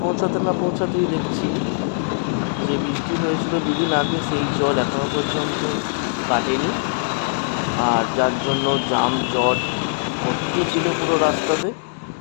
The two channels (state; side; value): silent; right; digital silence